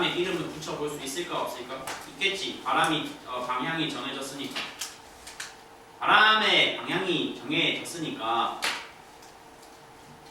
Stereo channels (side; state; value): both; identical; correlation 1.00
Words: 이름을 붙여볼 수 있을까 없을까? 있겠지. 바람이 방향이 정해졌으니까. 바람의 방향이 정해졌으니까.